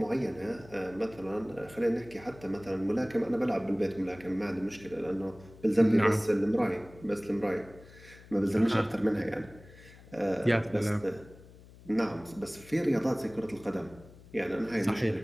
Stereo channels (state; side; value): noise; left; hum, 21 dB below the sound